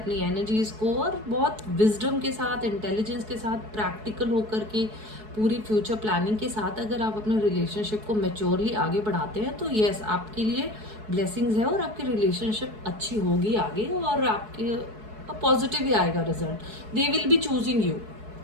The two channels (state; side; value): late; left; 4.7 ms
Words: एनर्जीज को और बहुत विजडम के साथ, इंटेलिजेंस के साथ, प्रैक्टिकल होकर के पूरी फ्यूचर प्लानिंग के साथ अगर आप अपने रिलेशनशिप को मैच्योरली आगे बढ़ाते हैं, तो यस, आपके लिए ब्लेसिंग्स है और आपकी रिलेशनशिप अच्छी होगी आगे, और आपके पॉजिटिव ही आएगा result. They will be choosing you.